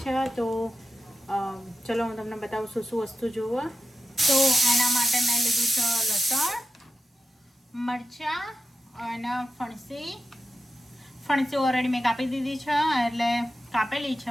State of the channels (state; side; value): normal; both; correlation 0.90